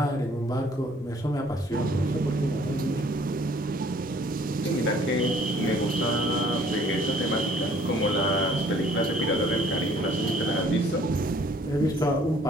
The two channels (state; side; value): normal; both; correlation 0.57